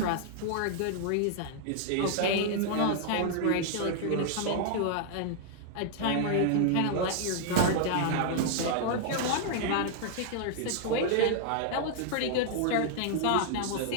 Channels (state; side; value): different; both; correlation -0.01